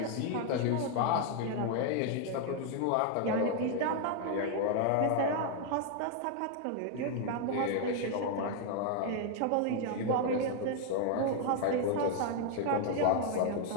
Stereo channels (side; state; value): both; different; correlation 0.00